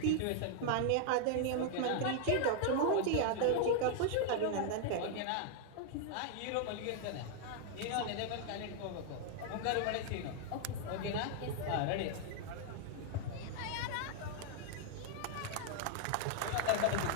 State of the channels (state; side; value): different; both; correlation 0.00